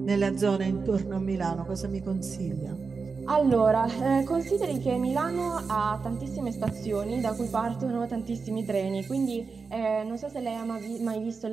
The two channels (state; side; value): quieter; left; 4.8 dB